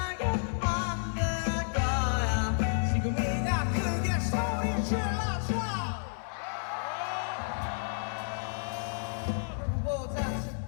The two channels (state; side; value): silent; right; 57 dB below the other